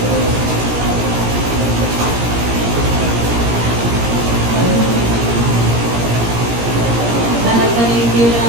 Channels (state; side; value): late; left; 17 ms